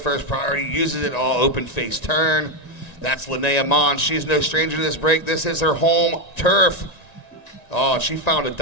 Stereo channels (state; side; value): late; right; 1.9 ms